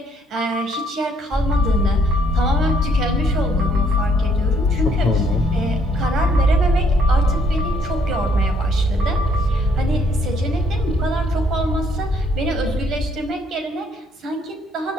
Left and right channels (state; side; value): normal; both; correlation 0.67